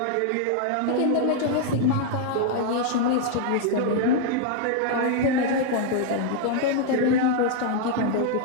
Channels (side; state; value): both; different; correlation 0.00